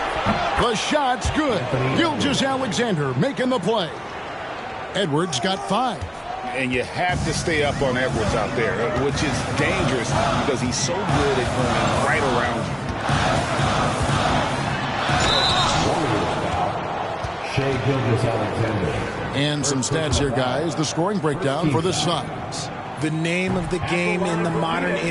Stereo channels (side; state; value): both; identical; correlation 1.00